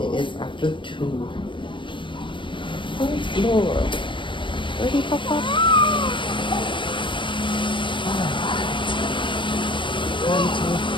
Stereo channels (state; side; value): late; right; 0.24 ms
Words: is after 2. Thanks, Lord. Ready, Papa? Time to